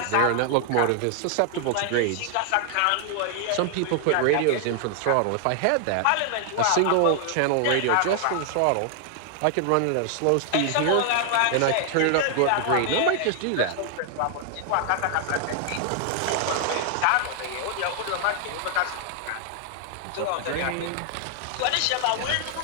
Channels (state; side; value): different; both; correlation 0.00